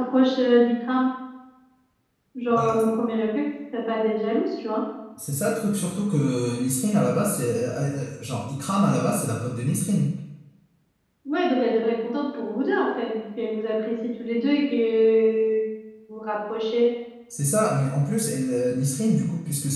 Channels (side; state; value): both; identical; correlation 1.00